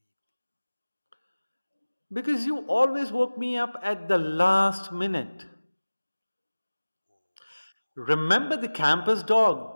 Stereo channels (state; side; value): inverted; both; correlation -1.00